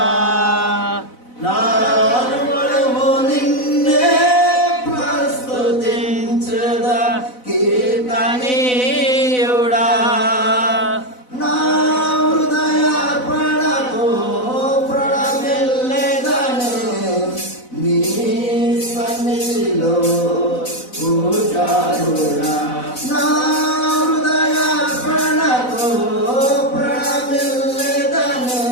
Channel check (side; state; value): right; late; 4.0 ms